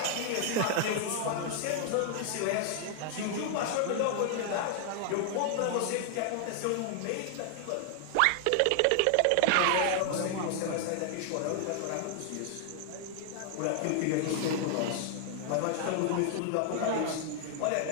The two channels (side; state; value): both; different; correlation 0.00